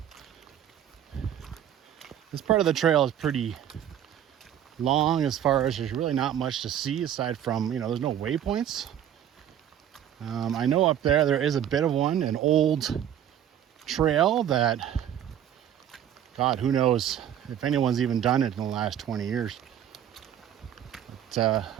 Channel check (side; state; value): left; quieter; 10.2 dB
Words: This part of the trail is pretty long as far as there's really not much to see aside from, you know, there's no waypoints. I know up there is a bit of one, an old trail that, God, who knows if anyone's even done it in the last 20 years. But